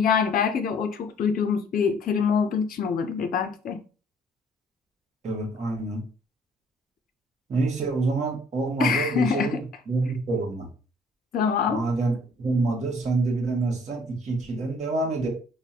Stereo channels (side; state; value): both; normal; correlation 0.59